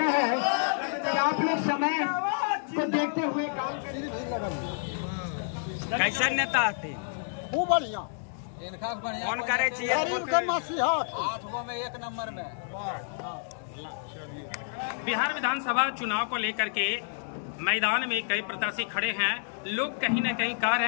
है कि आप लोग समय को देखते हुए काम करें। कैसा नेता आते खूब बढ़िया, कौन करे चाहिए? 8 गो में 1 नंबर में। बिहार विधानसभा चुनाव को लेकर के मैदान में कई प्रत्याशी खड़े हैं। लोग कहीं न कहीं कह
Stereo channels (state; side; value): silent; right; 58 dB below the other